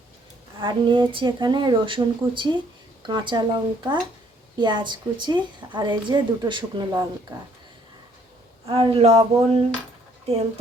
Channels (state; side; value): normal; both; correlation 0.64